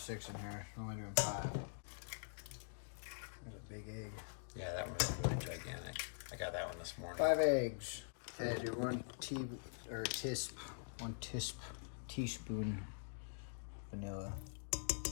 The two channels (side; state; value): right; silent; digital silence